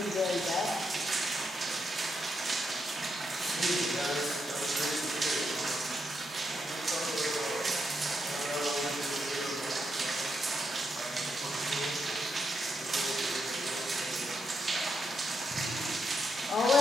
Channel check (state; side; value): normal; both; correlation 0.81